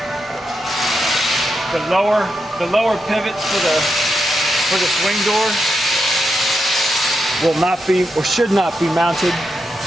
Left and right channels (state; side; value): normal; both; correlation 0.85